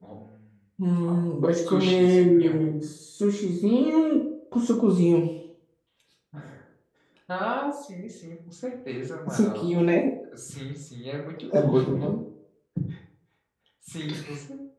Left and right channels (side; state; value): both; identical; correlation 1.00